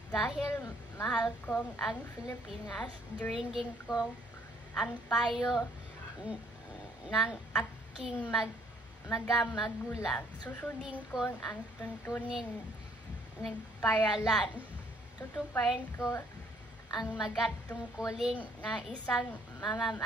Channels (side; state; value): both; normal; correlation 0.64